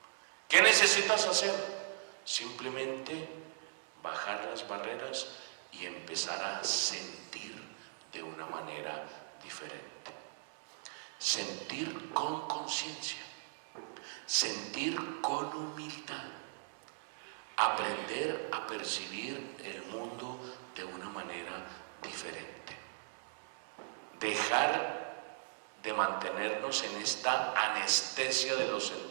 ¿Qué necesitas hacer? Simplemente bajar las barreras y empezar a sentir de una manera diferente. Sentir con conciencia, sentir con humildad, aprender a percibir el mundo de una manera diferente. Dejar de mantenernos en esta anestesia de los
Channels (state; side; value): silent; left; 52 dB below the other